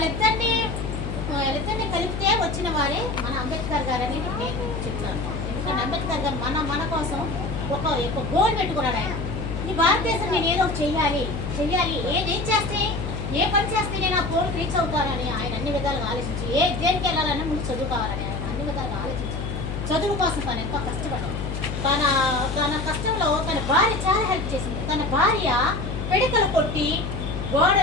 కలిపితే వచ్చిన వారే మన అంబేద్కర్ గారు అని నేను చెప్తాను. ఎందుకంటే అంబేద్కర్ గారు మన కోసం ఒక గోల్ పెట్టుకున్నాడు. ఆయన ఈ భారతదేశం నేను ఏదో చెయ్యాలి, ఏం చేస్తే ఏ పని చేస్తే నేను ఆ గోల్ రీచ్ అవుతానని ఆయన అన్ని విధాలుగా ఆలోచించి దేనికి వెళ్ళాలన్నా ముందు చదువు కావాలని ఆయన అన్ని విధాలుగా ఆలోచించారు. చదువు కోసం తను ఎంతో కష్టపడ్డాడు. తన కష్టంలో తన భార్య చాలా హెల్ప్ చేసింది. తన భార్య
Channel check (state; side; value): noise; left; hum, 4 dB below the sound